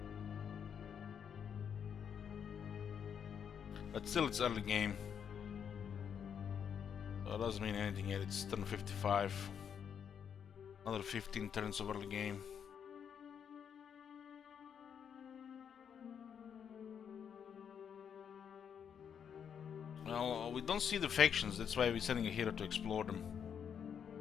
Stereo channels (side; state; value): right; quieter; 7.8 dB